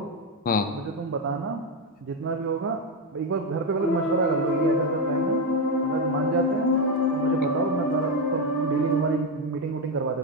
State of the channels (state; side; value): normal; both; correlation 0.08